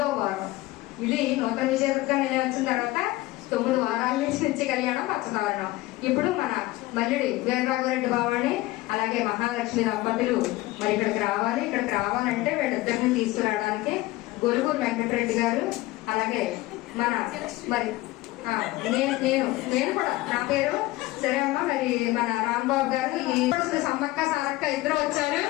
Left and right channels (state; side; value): quieter; right; 18.8 dB